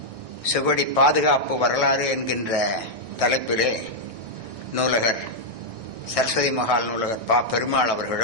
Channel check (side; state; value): left; late; 1.6 ms